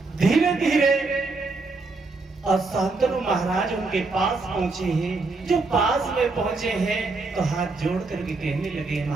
धीरे धीरे शांतनु महाराज उनके पास पहुंचे हैं, जो पास में पहुंचे हैं तो हाथ जोड़ करके कहने लगे,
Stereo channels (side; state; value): left; quieter; 3.7 dB